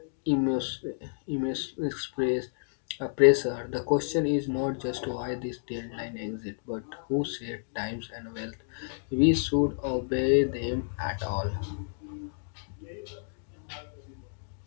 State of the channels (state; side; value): silent; right; digital silence